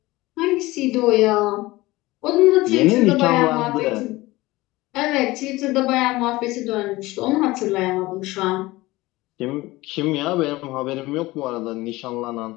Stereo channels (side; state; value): right; quieter; 19.7 dB